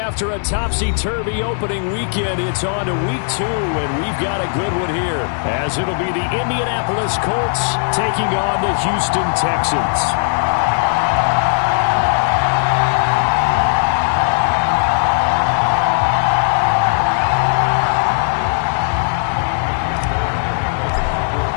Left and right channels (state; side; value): silent; right; digital silence